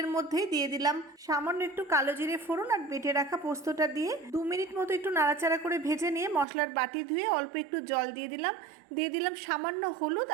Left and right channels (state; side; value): drops out; left; at 6.5 s